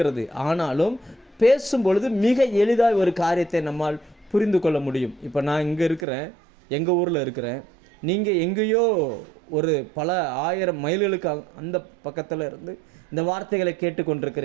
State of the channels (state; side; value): drops out; left; at 6.1 s